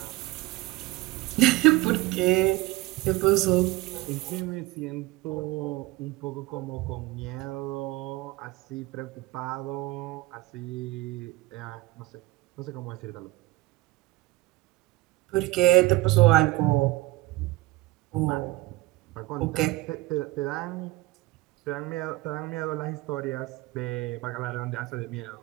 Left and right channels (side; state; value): left; quieter; 19.4 dB